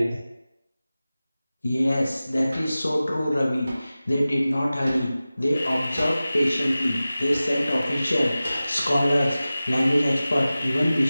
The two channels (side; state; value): both; inverted; correlation -0.96